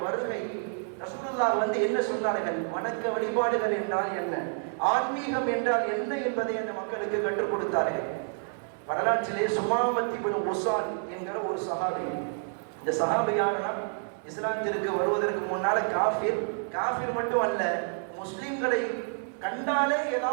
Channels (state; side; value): silent; left; 59 dB below the other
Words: வருகை, ரசூலுல்லாஹ் என்ன சொன்னார்கள்? வணக்க வழிபாடுகள் என்றால் என்ன, ஆன்மீகம் என்றால் என்ன என்பதை அந்த மக்களுக்கு கற்றுக் கொடுத்தார்கள். வரலாற்றிலே சுமாமத் இப்னு உஸால் என்கிற ஒரு சஹாபி. இந்த சஹாபியானா இஸ்லாத்திற்கு வருவதற்கு முன்னால காஃபிர் மட்டும் அல்ல, முஸ்லிம்களை கண்டாலே